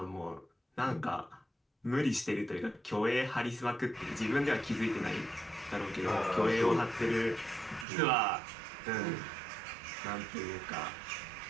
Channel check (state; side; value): drops out; left; at 7.9 s